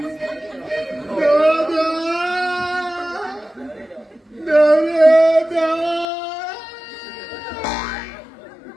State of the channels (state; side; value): drops out; right; at 6.1 s